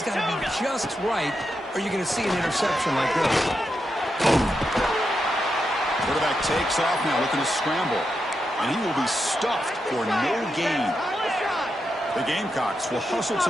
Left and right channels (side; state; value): both; normal; correlation 0.85